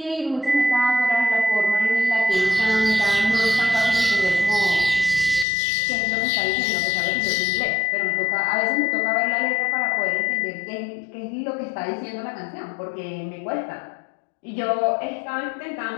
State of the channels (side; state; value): right; drops out; at 5.5 s